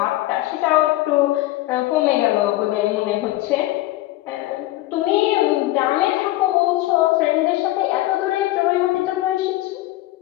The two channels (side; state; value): right; quieter; 16.9 dB